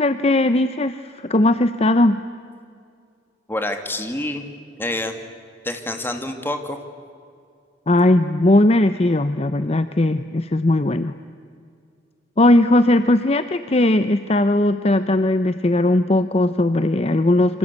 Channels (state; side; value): normal; both; correlation 0.70